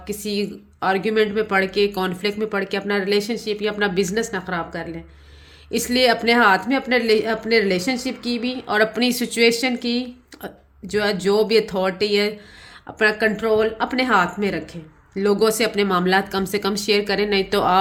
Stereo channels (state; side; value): identical; both; correlation 1.00